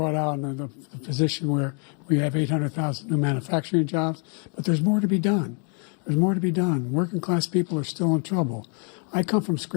out the position where we have 800,000 new manufacturing jobs. But there's more to be done. There's more to be done. Working class people are still in trouble. I come from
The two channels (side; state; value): right; quieter; 39.7 dB